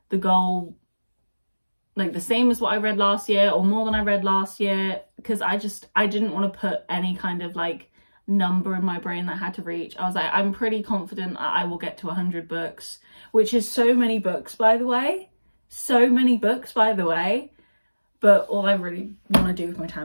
the goal like the same as what I read last year or more than I read last year, because I didn't want to put any kind of like number in my brain that I had to reach. I was like, I'm pretty confident that I will get to 100 books, which is so many books, by the way. So many books, by the way. But all I really want to do with my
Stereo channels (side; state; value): both; inverted; correlation -1.00